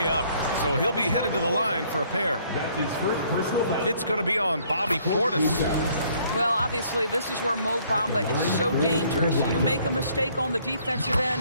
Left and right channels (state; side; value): inverted; both; correlation -0.63